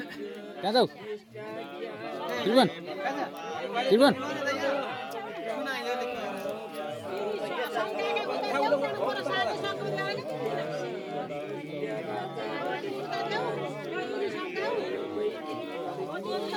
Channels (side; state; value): both; identical; correlation 1.00